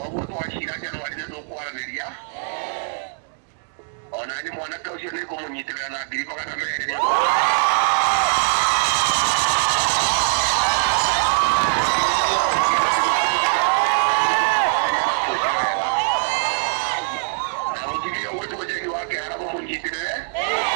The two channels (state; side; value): silent; left; digital silence